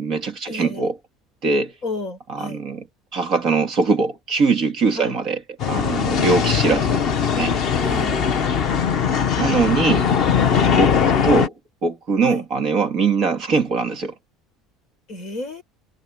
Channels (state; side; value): normal; both; correlation 0.43